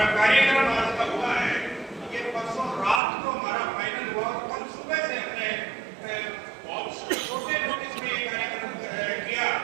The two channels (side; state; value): left; drops out; at 3.0 s